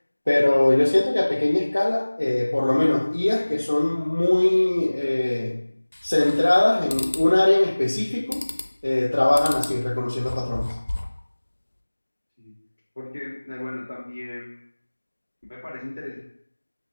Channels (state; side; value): inverted; both; correlation -1.00